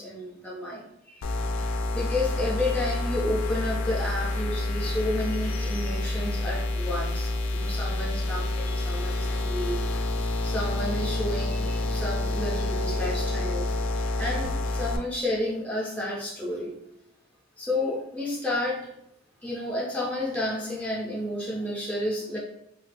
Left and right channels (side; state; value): both; normal; correlation 0.68